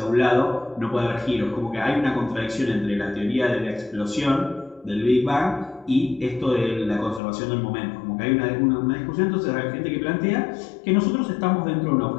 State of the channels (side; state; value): right; drops out; at 7.2 s